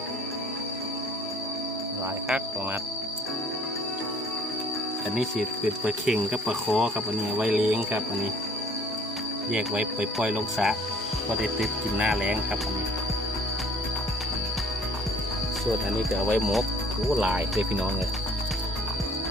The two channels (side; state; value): both; normal; correlation 0.55